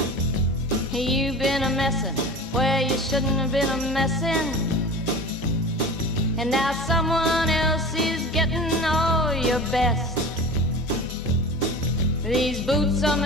you've been a messin' where you shouldn't have been a messin', and now someone else is getting all your best. These boots are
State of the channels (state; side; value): normal; both; correlation 0.34